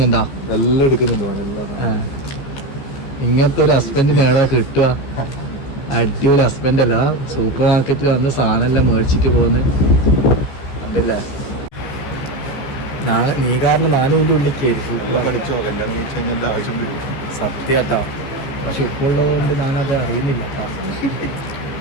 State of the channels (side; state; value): right; late; 14 ms